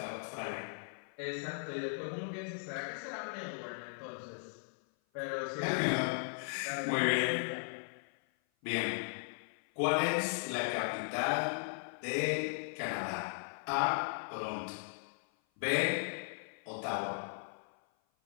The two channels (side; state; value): right; silent; 53 dB below the other